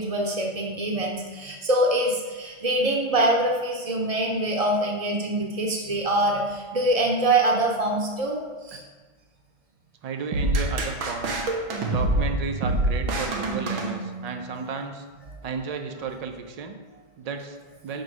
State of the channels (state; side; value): late; left; 1.7 ms